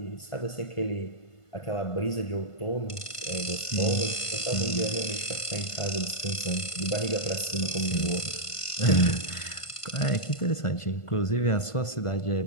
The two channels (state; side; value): late; right; 1.5 ms